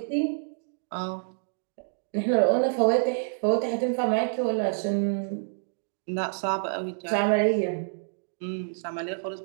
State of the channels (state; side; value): silent; left; digital silence